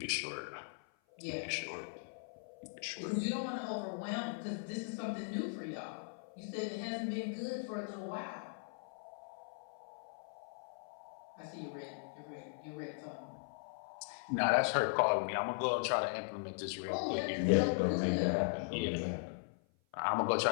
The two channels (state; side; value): silent; right; 52 dB below the other